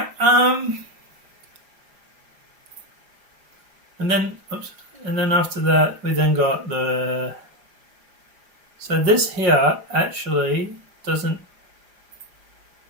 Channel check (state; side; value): late; left; 5.3 ms